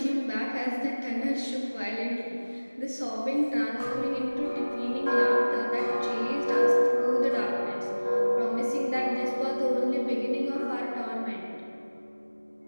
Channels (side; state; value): both; inverted; correlation -1.00